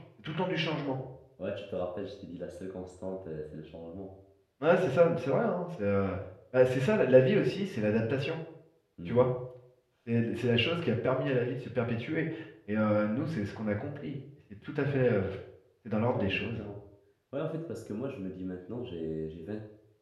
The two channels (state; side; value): identical; both; correlation 1.00